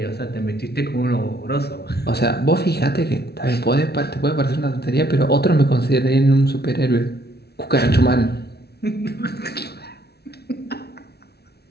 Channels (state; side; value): late; right; 0.47 ms